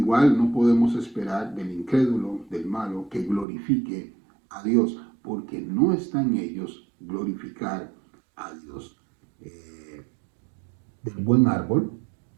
no podemos esperar del incrédulo, del malo, que glorifique a Dios, porque no está en ellos glorificar a Dios. Del buen árbol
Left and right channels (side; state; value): left; drops out; at 3.5 s